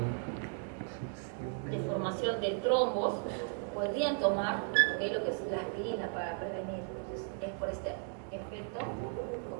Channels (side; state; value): left; silent; 54 dB below the other